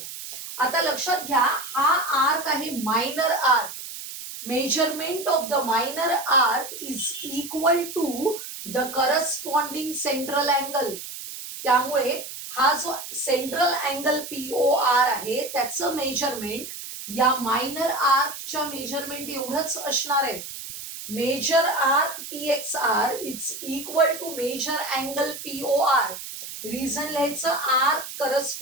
आता लक्षात घ्या, हा आर्क आहे minor arc. Measurement of the minor arc is equal to the corresponding central angle. त्यामुळे हा जो सेंट्रल अँगल POR आहे त्याचं मेजरमेंट या मायनर आर्कच्या मेजरमेंट एवढंच असणार आहे. Measure arc PXR is equal to measure angle POR. Reason लिहायचं arc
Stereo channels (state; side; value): noise; right; hiss, 10 dB below the sound